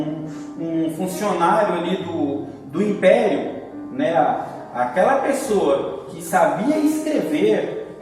funcionário ali do império, né? Aquela pessoa que sabia escrever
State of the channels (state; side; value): identical; both; correlation 1.00